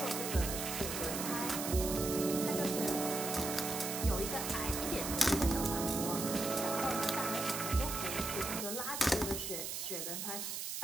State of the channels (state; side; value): noise; right; hiss, 4 dB below the sound